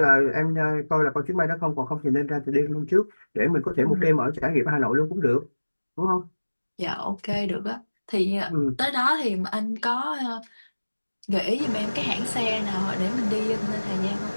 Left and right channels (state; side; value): inverted; both; correlation -1.00